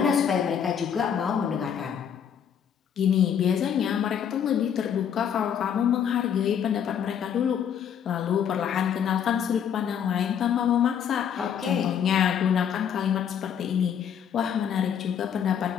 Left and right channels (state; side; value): quieter; right; 8.3 dB